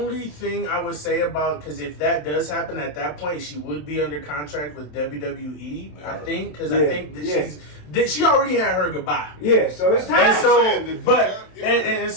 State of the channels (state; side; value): late; right; 27 ms